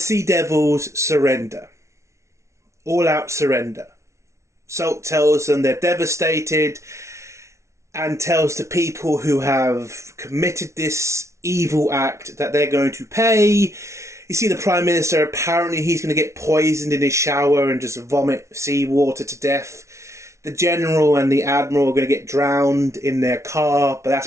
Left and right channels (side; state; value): left; late; 0.14 ms